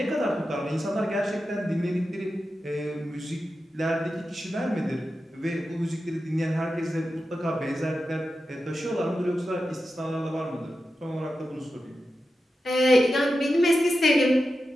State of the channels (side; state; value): both; normal; correlation 0.91